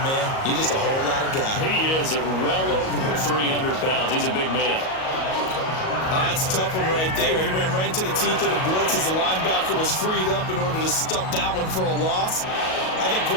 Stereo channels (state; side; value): late; right; 38 ms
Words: man, you're just a whole lot of guy. He is at well over 300 pounds. He's a big man. That's a tough one right there. He ran right into the teeth of the blitz as the linebacker was freed up in order to stop that one for a loss. I think